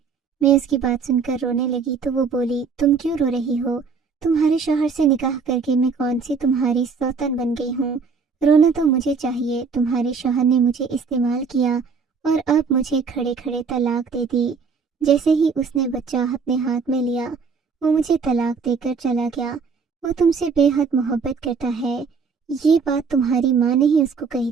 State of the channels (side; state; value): left; quieter; 5.3 dB